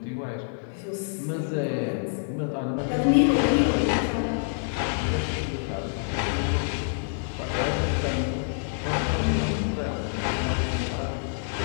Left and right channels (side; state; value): right; silent; 60 dB below the other